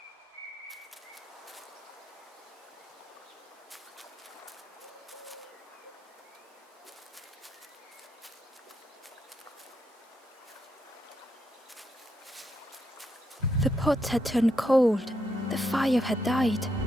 The pot had turned cold. The fire had died.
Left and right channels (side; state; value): both; normal; correlation 0.79